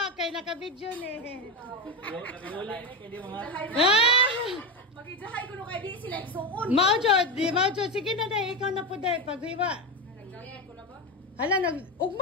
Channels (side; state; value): both; normal; correlation 0.16